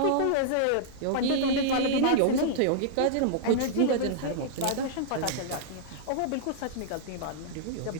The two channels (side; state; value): both; different; correlation -0.01